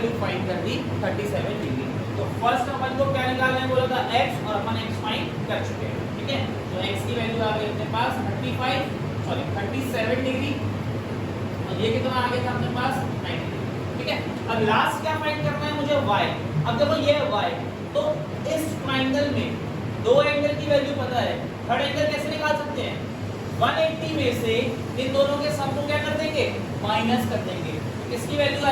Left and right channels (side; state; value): both; identical; correlation 1.00